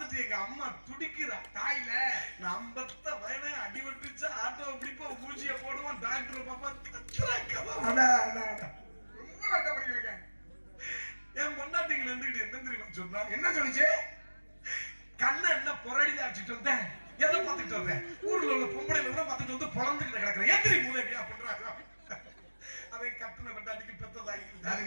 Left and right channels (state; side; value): inverted; both; correlation -1.00